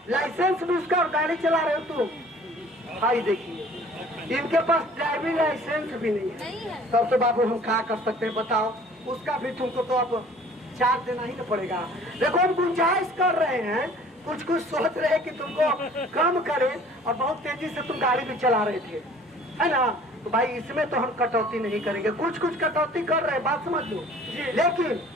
लाइसेंस भी उसका, और गाड़ी चला रहे हो तुम। भाई देखिए, इनके पास ड्राइविंग लाइसेंस भी नहीं है। नहीं है। तब तो बाबू हम क्या कर सकते हैं बताओ? उसका भी तुमको तो अब चार्ज देना ही तो पड़ेगा। देखो, हम गुंजाइश कर रहे हैं, कुछ कुछ सोच रहे हैं कि तुमको कम करें, और बहुत तेजी से तुम गाड़ी भी चला रहे थे, है ना? तो भाई इसमें तो हम कटौती नहीं करेंगे। कुछ कुछ कटौती कर रहे हैं, बात समझ लो। लेकिन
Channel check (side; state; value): both; normal; correlation 0.51